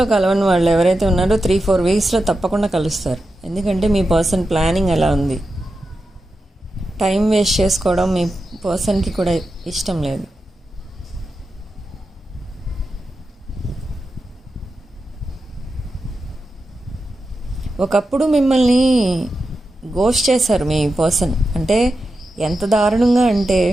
కలవని వాళ్ళు ఎవరైతే ఉన్నారో 3-4 వీక్స్లో తప్పకుండా కలుస్తారు. ఎందుకంటే మీ పర్సన్ ప్లానింగ్ ఎలా ఉంది. టైం వేస్ట్ చేసుకోవడం మీ పర్సన్కి కూడా ఇష్టం లేదు. ఒకప్పుడు మిమ్మల్ని గోస్ట్ చేశారు మీ పర్సన్. అంటే ఎంత దారుణంగా అంటే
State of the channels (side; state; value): both; normal; correlation 0.90